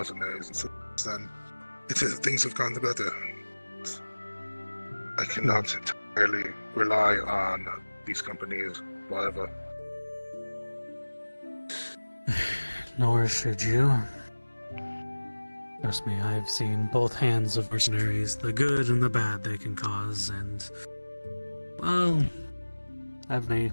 And since then, things have gone better. I cannot entirely rely on these companies forever. Nor should you. Trust me, I've seen both hands of mercenaries, the good and the bad they can cause, and, well, having a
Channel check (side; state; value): both; inverted; correlation -1.00